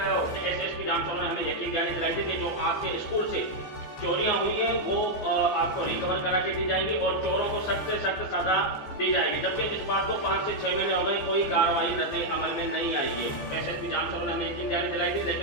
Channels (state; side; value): late; right; 14 ms